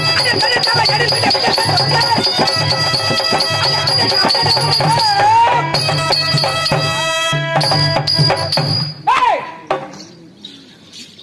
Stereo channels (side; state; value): both; identical; correlation 1.00